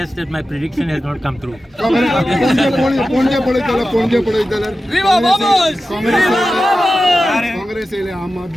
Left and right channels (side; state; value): both; normal; correlation 0.93